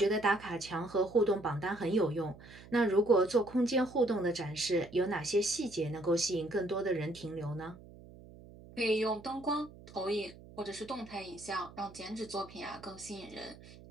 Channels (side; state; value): right; noise; hum, 19 dB below the sound